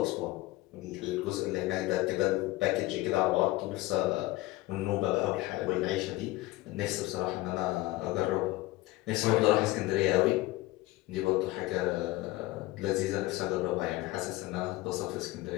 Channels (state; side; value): quieter; right; 18.8 dB